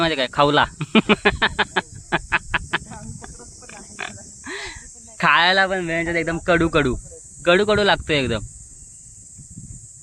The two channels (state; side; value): identical; both; correlation 1.00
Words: काय? खावला. खायला पण वेळेच्यात एकदम कडू कडू कडू कडू लागतोय एकदम.